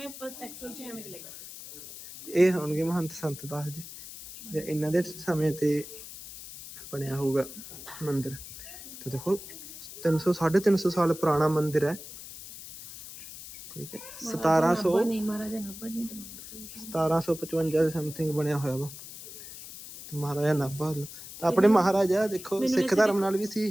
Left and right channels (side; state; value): left; noise; hiss, 13 dB below the sound